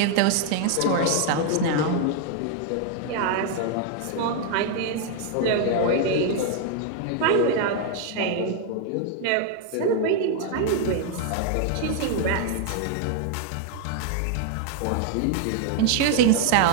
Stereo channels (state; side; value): different; both; correlation 0.00